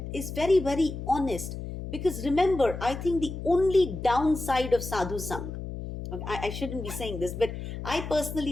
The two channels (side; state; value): left; noise; hum, 8 dB below the sound